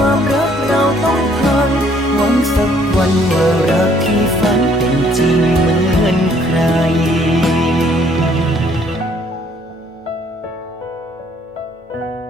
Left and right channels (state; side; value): normal; both; correlation 0.63